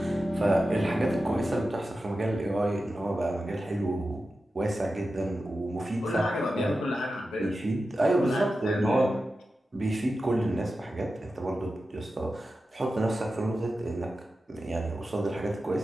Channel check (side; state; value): both; normal; correlation 0.92